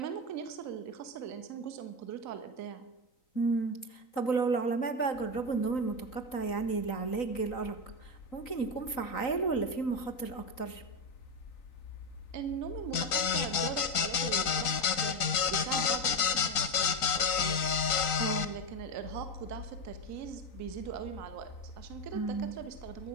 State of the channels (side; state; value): right; late; 3.9 ms